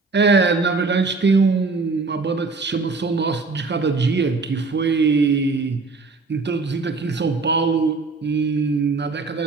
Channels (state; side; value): quieter; left; 4.0 dB